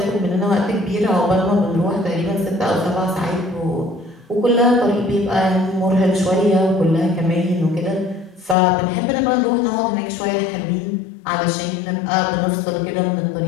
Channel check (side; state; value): right; drops out; at 8.6 s